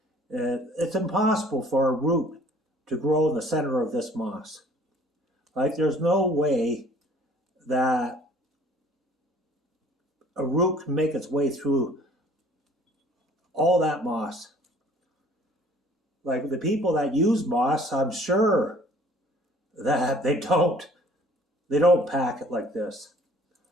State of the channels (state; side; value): normal; both; correlation 0.55